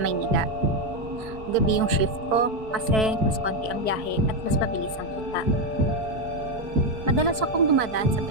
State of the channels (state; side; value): late; left; 4.6 ms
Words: Gabi yung shift ko kasi mas konti ang biyahe at mas mabilis ang kita. Madalas akong dumadaan sa